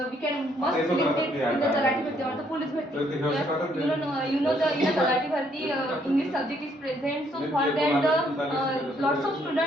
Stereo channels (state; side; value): normal; both; correlation 0.69